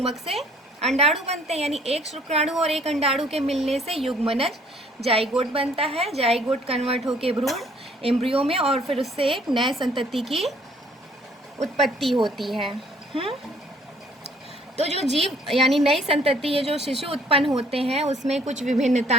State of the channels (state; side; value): normal; both; correlation 0.60